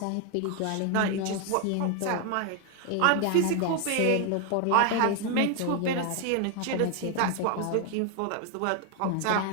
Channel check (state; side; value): different; both; correlation 0.01